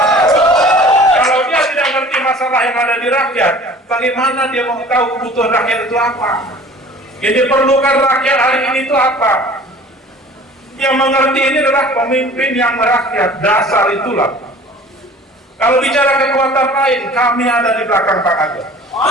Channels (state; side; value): normal; both; correlation 0.46